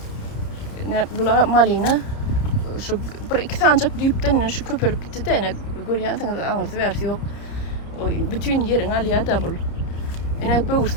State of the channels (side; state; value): right; late; 30 ms